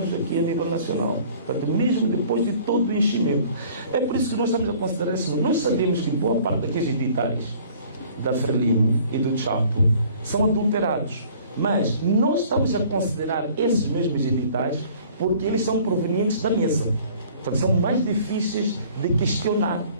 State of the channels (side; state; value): both; inverted; correlation -0.53